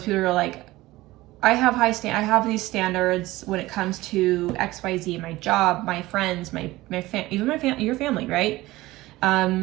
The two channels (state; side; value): quieter; left; 18.4 dB